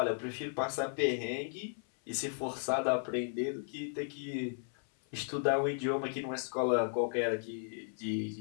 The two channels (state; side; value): silent; right; 54 dB below the other